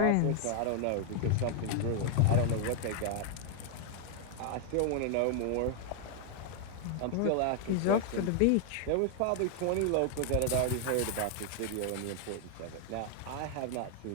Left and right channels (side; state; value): both; different; correlation 0.00